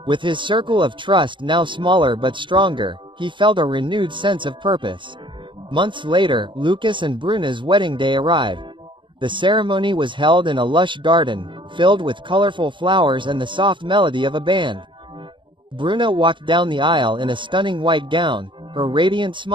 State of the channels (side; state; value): left; late; 0.24 ms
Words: With his circle of trust now smaller but stronger, he felt a renewed sense of purpose. Months later, Lucas and Bruna's wedding day arrived. The ceremony was held in a lush garden, filled with colorful flowers and the soft melody of a band. Bruna walked down the aisle in a stunning white gown, her radiant